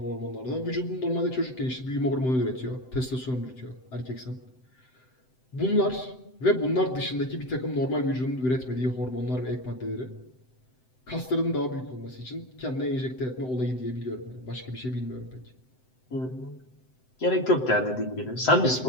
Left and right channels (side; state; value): right; late; 7.8 ms